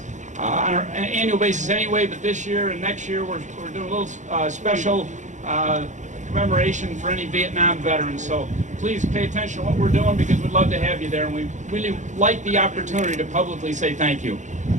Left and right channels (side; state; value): left; late; 0.35 ms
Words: on an annual basis anyway, but this year and next year we're doing a little special commemoration for any Vietnam veterans. So please pay attention to what we're doing because we'd love to have you there, and we really like the opportunity to publicly say thank you.